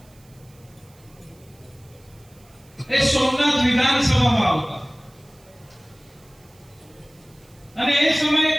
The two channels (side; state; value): right; noise; hiss, 29 dB below the sound